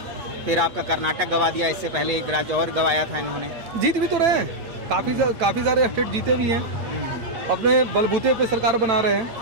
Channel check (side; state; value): left; late; 8.3 ms